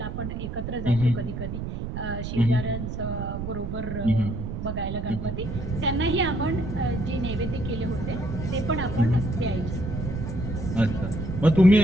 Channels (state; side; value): noise; right; rumble, 5 dB below the sound